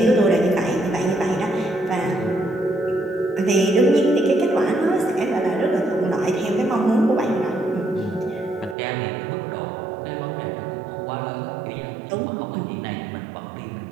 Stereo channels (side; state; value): left; drops out; at 8.8 s